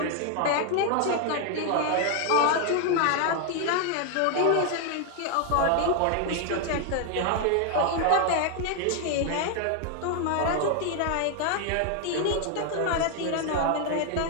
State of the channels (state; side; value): different; both; correlation 0.01